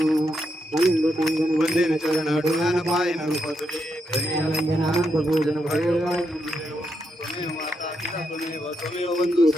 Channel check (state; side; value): normal; both; correlation 0.82